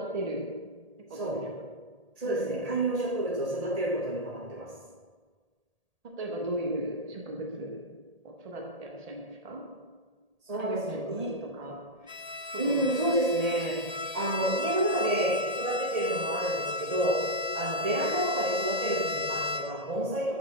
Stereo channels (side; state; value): left; late; 1.8 ms